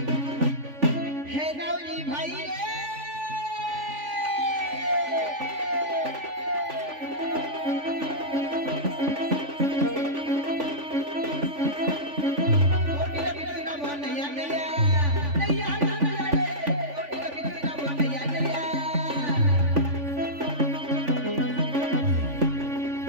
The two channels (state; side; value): late; left; 3.5 ms